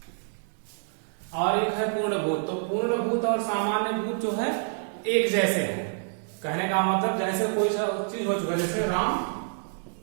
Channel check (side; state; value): left; silent; digital silence